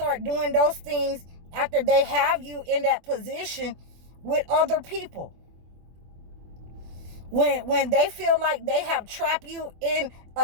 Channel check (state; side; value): late; left; 24 ms